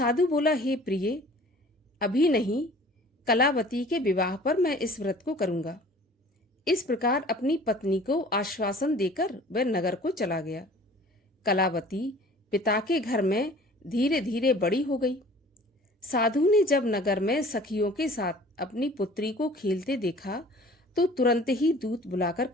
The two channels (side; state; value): both; normal; correlation 0.48